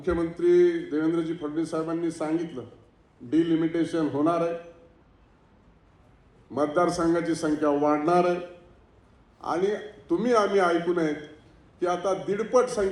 देवेंद्रजी फडणवीस साहेबांनी सांगितलं डिलिमिटेशन होणार आहे, मतदारसंघाची संख्या वाढणार आहे आणि तुम्ही आम्ही ऐकून आहेत की आता 1.5पट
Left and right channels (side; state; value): both; identical; correlation 1.00